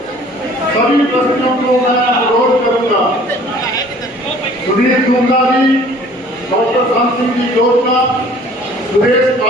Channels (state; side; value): normal; both; correlation 0.52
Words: सभी ट्रस्टियों को मैं अनुरोध करूंगा, सुधीर गुंगा जी, डॉक्टर शाम सिंह जी जोशना, सुरेश